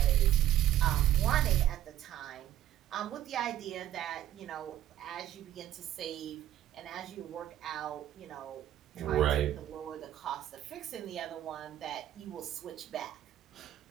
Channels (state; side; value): quieter; left; 12.3 dB